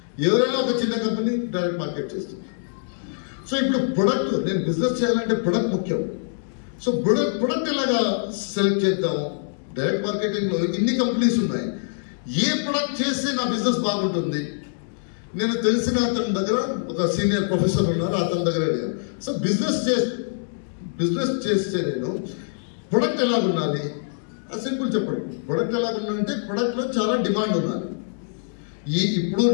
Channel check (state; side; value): silent; right; digital silence